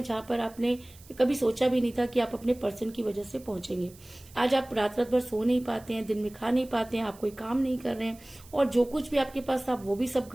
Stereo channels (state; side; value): noise; right; hiss, 23 dB below the sound